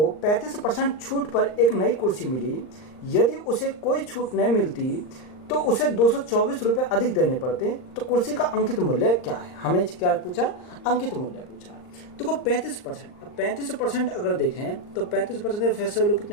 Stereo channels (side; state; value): right; late; 39 ms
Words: 35% छूट पर एक नई कुर्सी मिली। यदि उसे कोई छूट नहीं मिलती तो उसे 224 रुपये अधिक देने पड़ते, तो कुर्सी का अंकित मूल्य क्या है। हमें क्या पूछा, अंकित मूल्य पूछा है। देखो 35%, अब 35% अगर देखें तो 35% की फेस वैल्यू